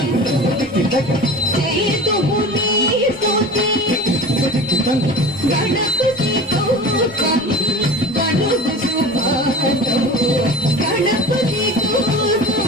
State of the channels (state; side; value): normal; both; correlation 0.35